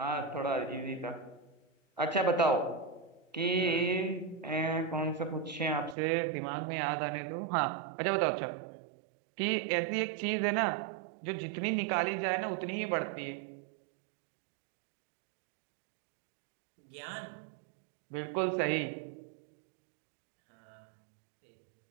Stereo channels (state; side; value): drops out; left; at 6.0 s